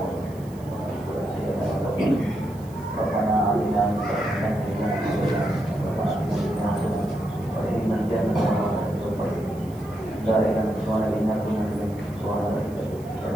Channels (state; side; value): noise; right; hiss, 25 dB below the sound